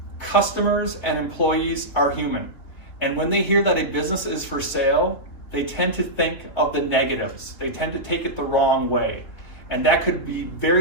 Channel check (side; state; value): right; late; 3.5 ms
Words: customers and employees are human. And when they hear that a business is for sale, they tend to think of the negatives. They tend to take it the wrong way. And that could be